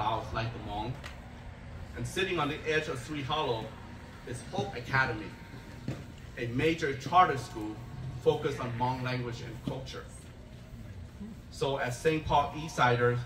like the Hmong. And sitting on the edge of Sweet Hollow is Hope Academy, a major charter school focused on Hmong language and culture. So as St. Paul Eastsiders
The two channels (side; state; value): both; identical; correlation 1.00